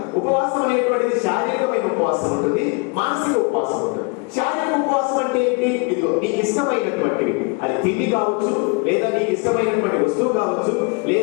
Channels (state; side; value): quieter; right; 31.2 dB